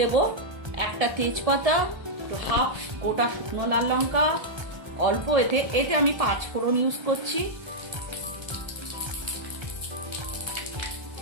একটা তেজপাতা, হাফ গোটা শুকনো লাল লঙ্কা, অল্প এতে আমি 5 ফোড়ন ইউজ করছি।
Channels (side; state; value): left; late; 1.7 ms